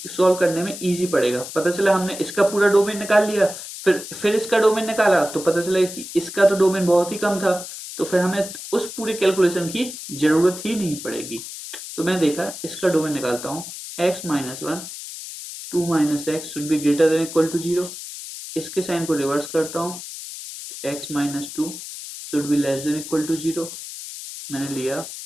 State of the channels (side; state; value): left; noise; hiss, 10 dB below the sound